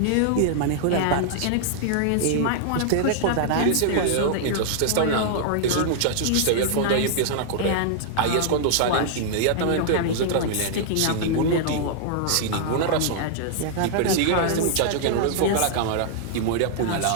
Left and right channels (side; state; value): both; different; correlation -0.01